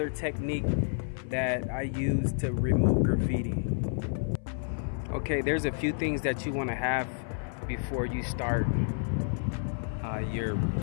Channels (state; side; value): silent; right; 58 dB below the other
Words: technique that I use to remove graffiti. Okay, there's a few things that you want to have before you start your